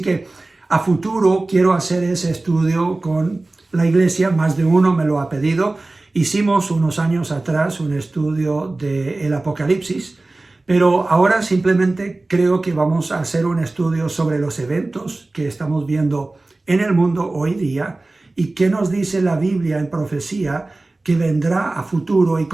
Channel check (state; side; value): quieter; left; 3.0 dB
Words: a futuro quiero hacer ese estudio con la iglesia, más de uno me lo ha pedido. Hicimos unos años atrás un estudio del Apocalipsis, pero ahora simplemente creo que vamos a hacer un estudio sobre los eventos que estamos viendo en el mundo hoy día y qué nos dice la Biblia en profecía que vendrá a futuro y